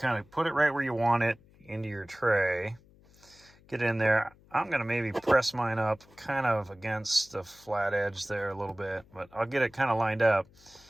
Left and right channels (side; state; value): left; noise; hum, 27 dB below the sound